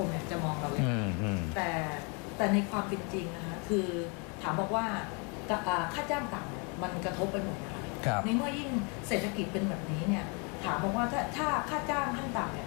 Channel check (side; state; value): right; quieter; 33.9 dB